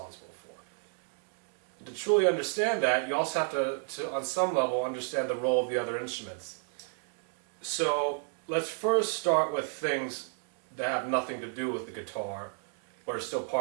for. To truly understand that, you also have to on some level, understand the role of the other instruments. So let's first start with things that have nothing to do with the guitar, but are still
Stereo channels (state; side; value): silent; left; 57 dB below the other